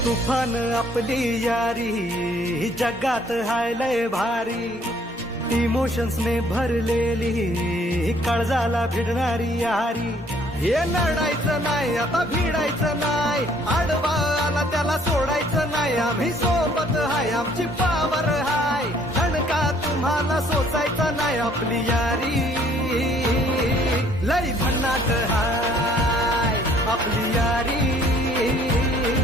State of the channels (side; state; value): both; normal; correlation 0.61